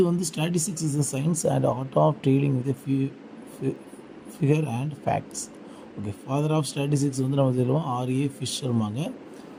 வந்து statistics is a science and art of dealing with figure and facts. Okay, father of statistics வந்து நம்ம சொல்லுவோம் ஆர்ஏ ஃபிஷர்மாங்க.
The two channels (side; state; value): both; identical; correlation 1.00